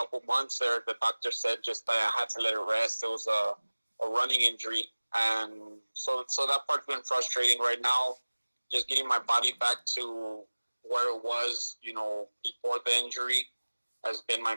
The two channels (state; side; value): inverted; both; correlation -1.00